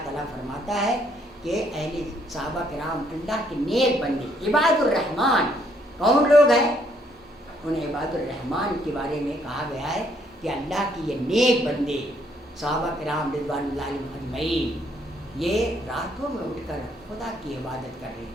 تعالیٰ فرماتا ہے کہ اہل صحابہ کرام اللہ کے نیک بندے عباد الرحمن کون لوگ ہیں؟ ان عباد الرحمن کے بارے میں کہا گیا ہے کہ اللہ کی یہ نیک بندے صحابہ کرام رضوان اللہ علیہم اجمعین یہ راتوں میں اٹھ کر خدا کی عبادت کر رہے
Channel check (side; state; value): both; normal; correlation 0.69